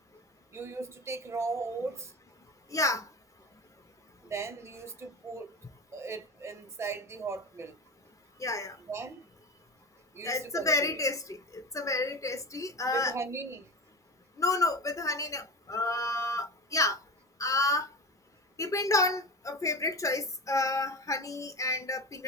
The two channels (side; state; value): both; normal; correlation 0.26